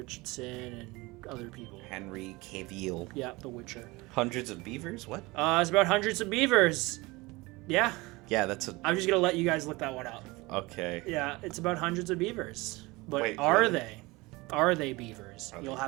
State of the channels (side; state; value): left; quieter; 22.8 dB